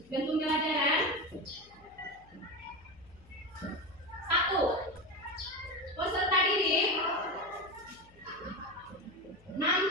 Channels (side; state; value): left; noise; hum, 26 dB below the sound